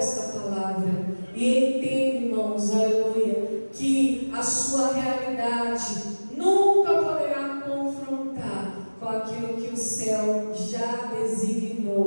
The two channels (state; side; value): inverted; both; correlation -1.00